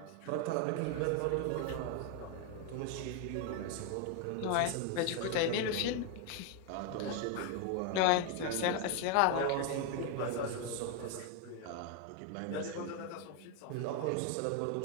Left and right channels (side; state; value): both; different; correlation 0.01